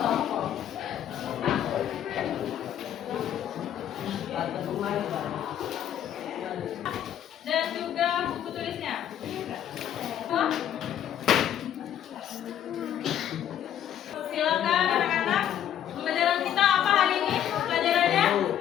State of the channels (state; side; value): quieter; right; 10.4 dB